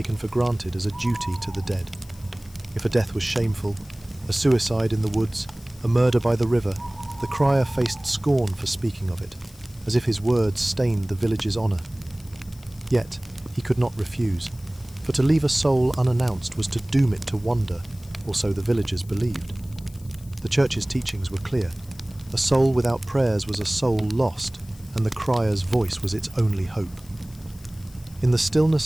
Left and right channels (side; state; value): left; noise; hiss, 24 dB below the sound